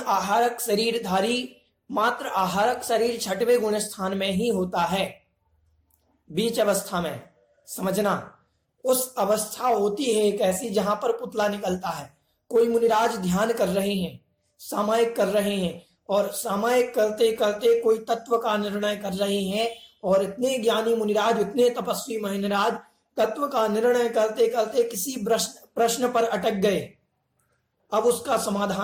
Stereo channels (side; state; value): both; identical; correlation 1.00